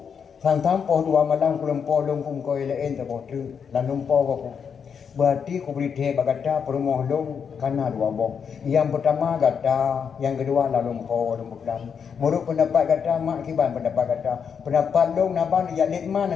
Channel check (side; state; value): right; quieter; 6.8 dB